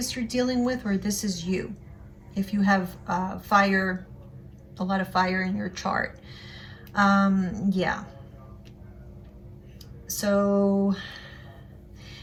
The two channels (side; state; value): both; identical; correlation 1.00